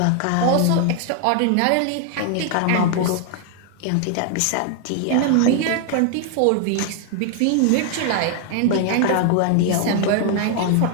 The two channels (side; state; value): both; different; correlation 0.00